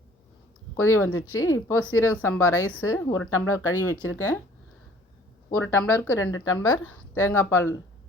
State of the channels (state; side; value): normal; both; correlation 0.54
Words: கொதி வந்துடுச்சு. இப்போது சீரக சம்பா ரைஸு 1 டம்ளர் கழுவி வச்சுருக்கேன். 1 டம்ளருக்கு 2 டம்ளர் தேங்காய் பால்